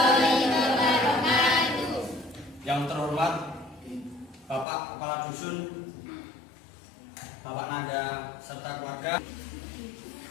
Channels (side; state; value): right; drops out; at 4.7 s